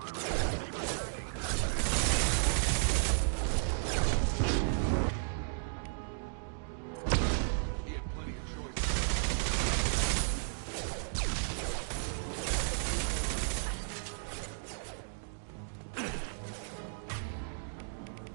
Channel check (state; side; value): silent; left; digital silence